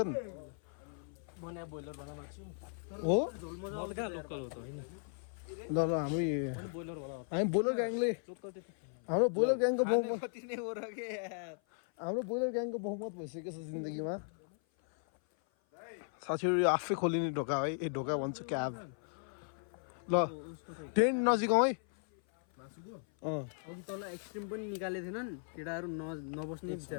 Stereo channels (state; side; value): silent; right; 53 dB below the other